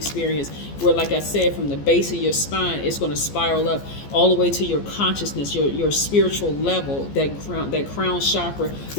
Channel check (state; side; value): late; right; 14 ms